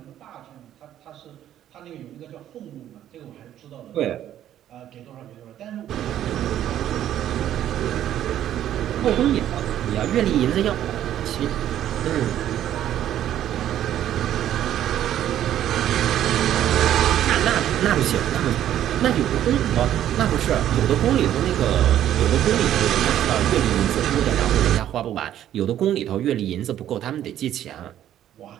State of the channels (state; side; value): quieter; left; 11.5 dB